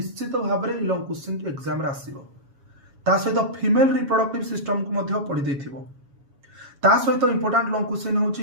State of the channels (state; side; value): late; left; 7.2 ms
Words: भाव में लंग क्वेश्चन एग्जाम आसो सहित फीमेल रिप्रोडक्टिव सिस्टम को पढ़ी देथिबो। ता सहित इंपोर्टाट लंग क्वेश्चन हूँ